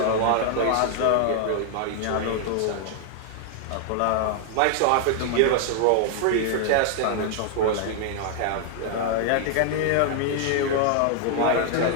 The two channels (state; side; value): different; both; correlation 0.00